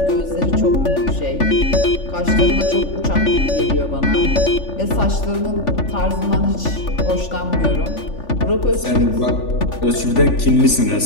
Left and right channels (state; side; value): late; right; 3.4 ms